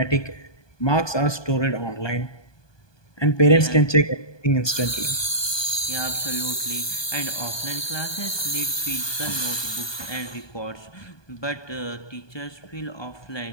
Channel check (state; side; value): late; right; 1.2 ms